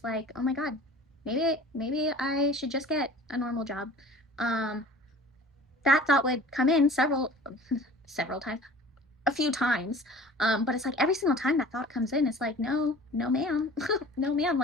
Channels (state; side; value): normal; both; correlation 0.45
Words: like, oh my god, maybe I should just get a normal job. Um, that thought would come in several times, a few times. But it's like every single time that thought comes in, it's like, no, no, ma'am, no, ma'am.